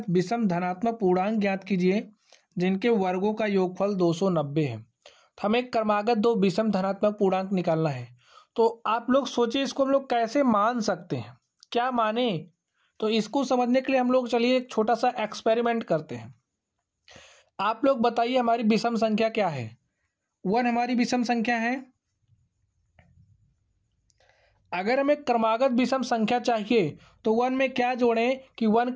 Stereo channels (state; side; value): identical; both; correlation 1.00